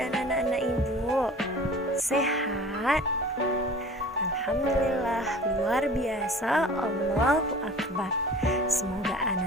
anak-anak ibu? Sehat? Alhamdulillah, luar biasa, Allahu Akbar. Semoga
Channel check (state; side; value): normal; both; correlation 0.43